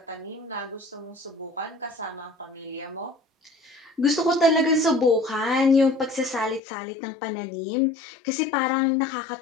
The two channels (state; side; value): drops out; right; at 6.6 s